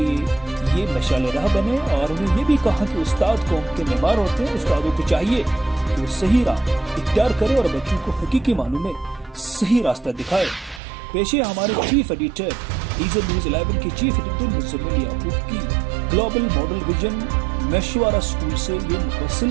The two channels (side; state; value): left; drops out; at 10.8 s